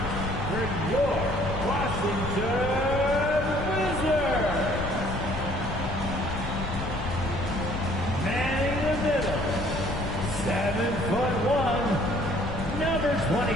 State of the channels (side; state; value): left; noise; rumble, 6 dB below the sound